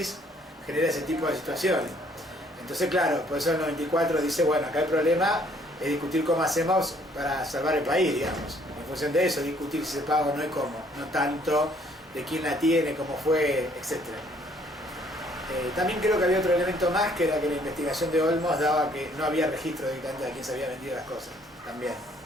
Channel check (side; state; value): both; normal; correlation 0.63